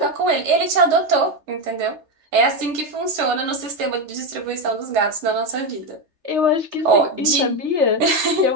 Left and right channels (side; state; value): left; late; 3.3 ms